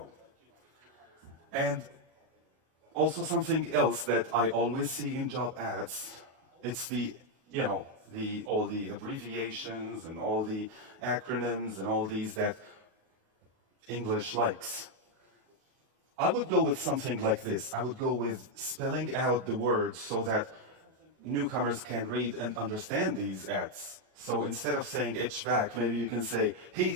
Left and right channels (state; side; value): late; left; 38 ms